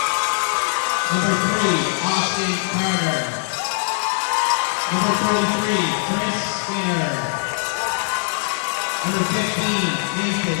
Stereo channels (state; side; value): silent; right; digital silence